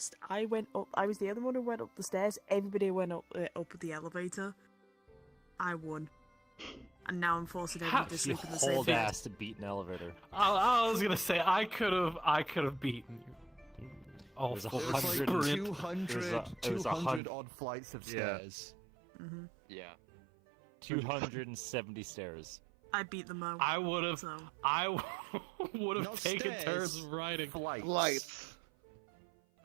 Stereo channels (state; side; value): drops out; left; at 17.2 s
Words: I went up. I was the other one who went up the stairs. Everybody went up the elevator. I won, and now I'm forcing everybody to sleep in the same Hold bed. ass to beat an elevator. I was gonna say I could have beaten you. Oh, There's a It was like 100 200 odd flights of stairs. Mm-hmm. Yeah. 270 stairs. I beat them all. I would have. So. I would have Not taken stairs, turns riding. Lights.